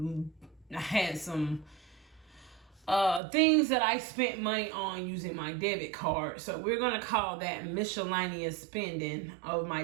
things that I spent money on using my debit card. So we're gonna call that miscellaneous spending of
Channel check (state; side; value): drops out; left; at 3.2 s